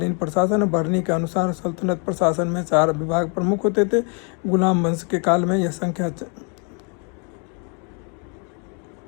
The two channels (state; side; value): quieter; right; 37.1 dB